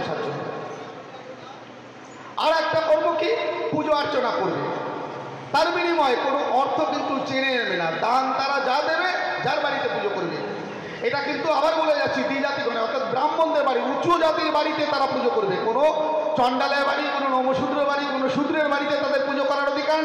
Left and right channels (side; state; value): both; identical; correlation 1.00